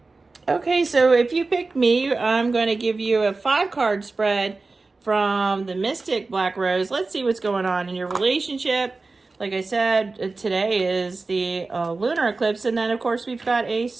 Okay, so if you picked me, I'm going to give you a 5-card spread from the Mystic Black Rose. Let's see what's going on in your relationship. Like I said, today is the lunar eclipse, and then, of course, we've got a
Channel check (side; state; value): left; quieter; 3.7 dB